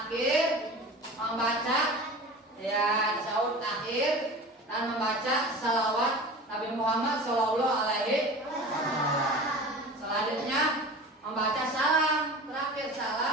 membaca ya tasyahud akhir dan membaca salawat Nabi Muhammad Shallallahu Alaihi Wasallam. Selanjutnya membaca salam, terakhir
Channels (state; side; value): normal; both; correlation 0.36